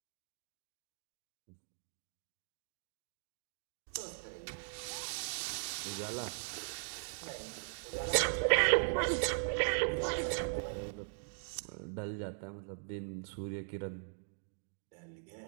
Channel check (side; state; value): left; silent; digital silence